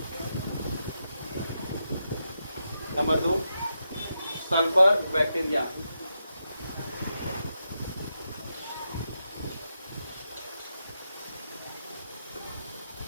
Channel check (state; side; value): inverted; both; correlation -0.85